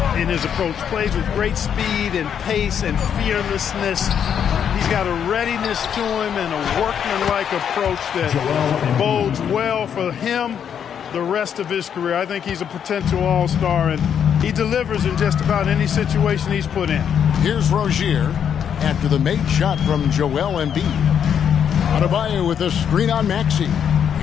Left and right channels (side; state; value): right; quieter; 8.3 dB